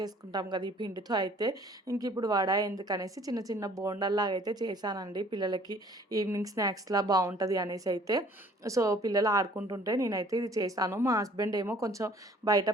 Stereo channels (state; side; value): normal; both; correlation 0.55